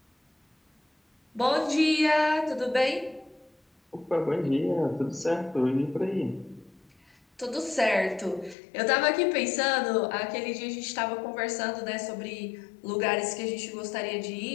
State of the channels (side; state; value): right; drops out; at 8.6 s